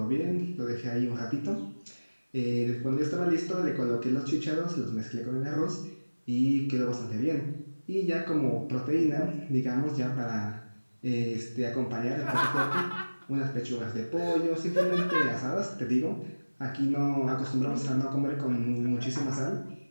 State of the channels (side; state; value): both; inverted; correlation -1.00